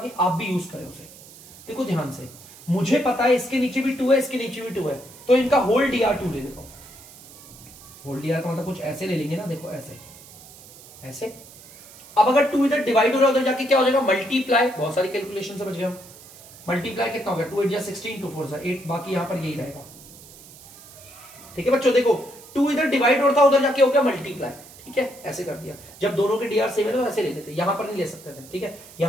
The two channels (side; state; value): right; noise; hiss, 20 dB below the sound